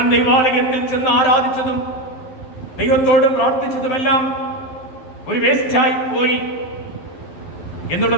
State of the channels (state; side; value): late; right; 11 ms